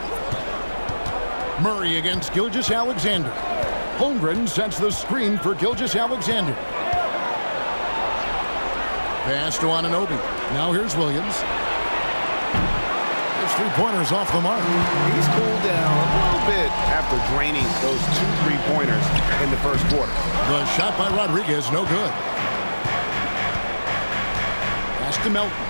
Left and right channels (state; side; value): inverted; both; correlation -1.00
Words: Murray against Gilgeous-Alexander. Holmgren sets the screen for Gilgeous-Alexander. Pass to Anunoby. Now here's Williams. There's 3-pointers off the mark. He's cooled down a little bit after draining those 2 3-pointers in the first quarter. The shot by Rodriguez, no good. Pass to Melton.